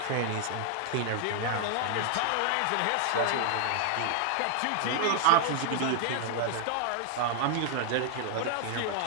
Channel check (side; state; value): both; different; correlation 0.00